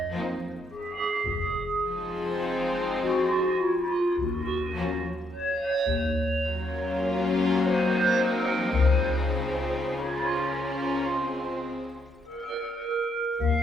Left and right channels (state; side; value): normal; both; correlation 0.76